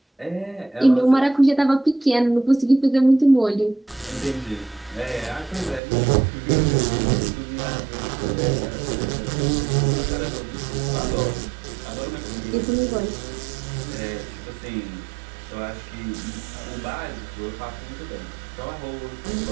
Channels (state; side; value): drops out; left; at 5.8 s